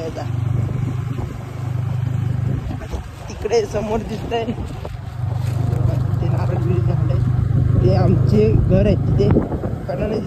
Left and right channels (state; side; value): identical; both; correlation 1.00